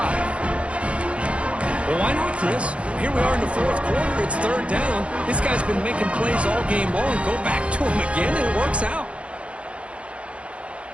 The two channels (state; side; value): late; left; 0.061 ms